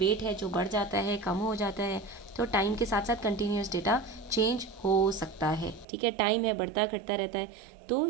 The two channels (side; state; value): left; drops out; at 5.9 s